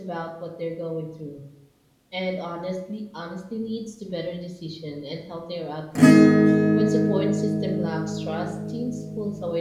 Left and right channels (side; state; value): both; identical; correlation 1.00